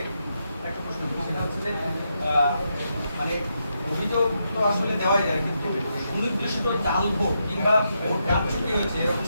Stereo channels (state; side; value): inverted; both; correlation -0.82